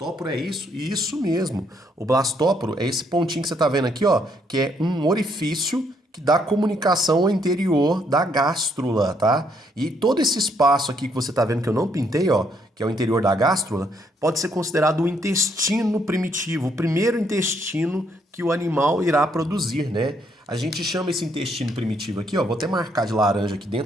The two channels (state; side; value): normal; both; correlation 0.71